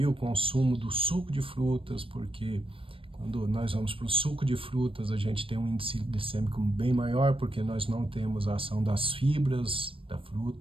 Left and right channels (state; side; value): late; left; 0.26 ms